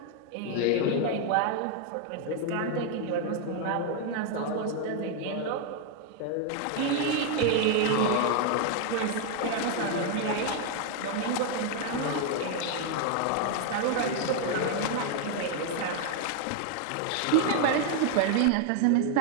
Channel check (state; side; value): different; both; correlation 0.00